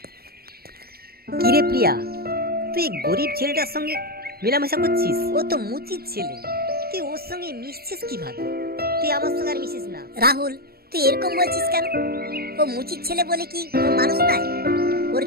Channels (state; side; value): late; left; 0.45 ms